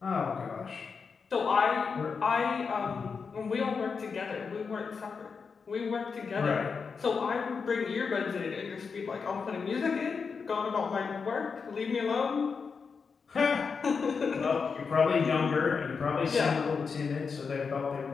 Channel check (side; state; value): right; quieter; 5.4 dB